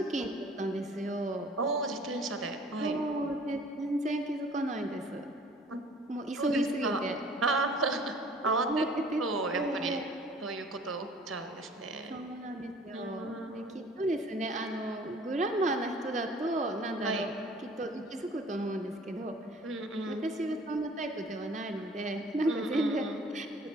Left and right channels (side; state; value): both; normal; correlation 0.51